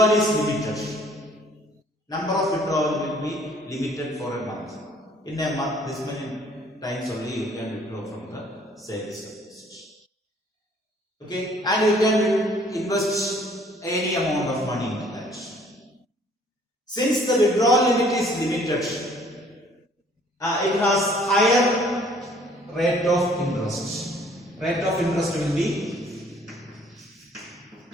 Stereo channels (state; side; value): normal; both; correlation 0.58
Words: is limited, number of withdrawal will be limited for a month. In a month, this many times only you can withdraw from the savings deposit. Okay, and you can invest any amount of money into that. Since the withdrawal limit is limited, it has higher rate of interest. Rate of interest will be